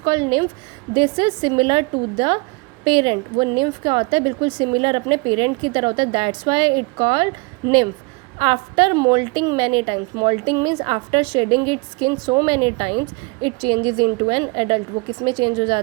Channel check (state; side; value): quieter; left; 28.2 dB